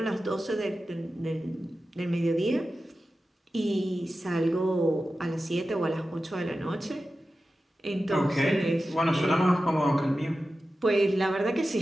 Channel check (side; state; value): both; normal; correlation 0.93